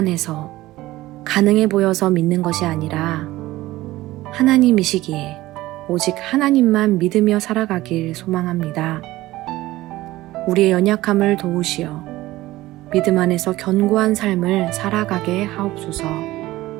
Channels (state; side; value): quieter; left; 17.2 dB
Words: 해서 가능해 보여서 믿는 것이 아니라 하나님이시기에 오직 하나님만 믿으며 살아가길 소망합니다. 우리의 연약함을 도우시어 믿음 안에서 견고한 삶을 살아가게 하옵소서.